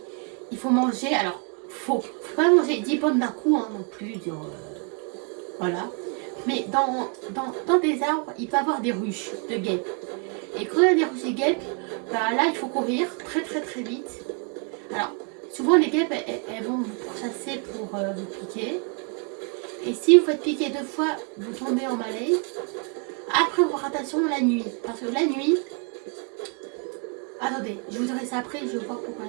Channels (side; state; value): left; quieter; 37.2 dB